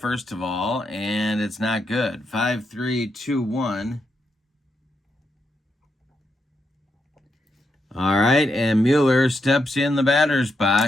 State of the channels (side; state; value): both; normal; correlation 0.82